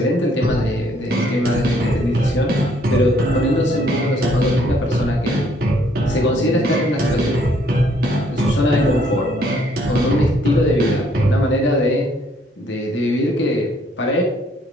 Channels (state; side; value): normal; both; correlation 0.65